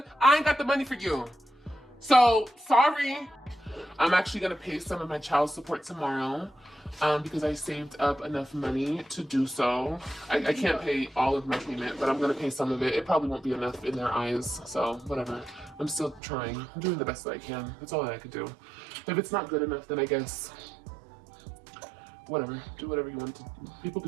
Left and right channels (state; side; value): drops out; left; at 16.2 s